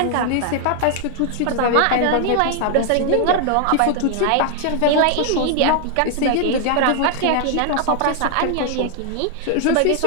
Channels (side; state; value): both; different; correlation 0.00